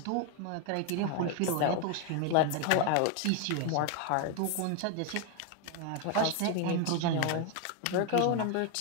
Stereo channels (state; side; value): different; both; correlation 0.01